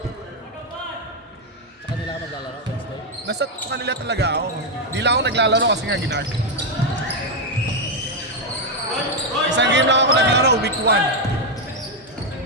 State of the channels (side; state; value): both; normal; correlation 0.02